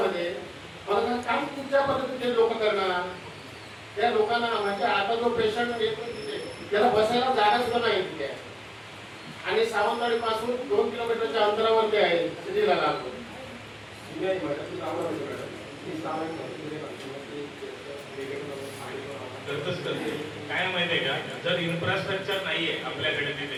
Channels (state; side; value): identical; both; correlation 1.00